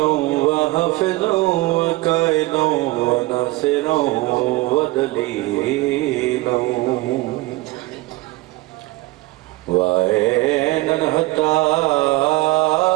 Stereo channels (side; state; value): left; quieter; 21.4 dB